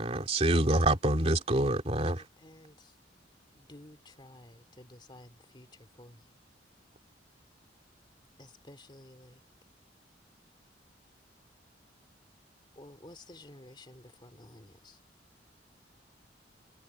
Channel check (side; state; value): both; normal; correlation 0.55